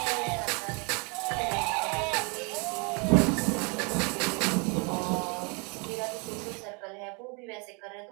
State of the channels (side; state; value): left; quieter; 33.0 dB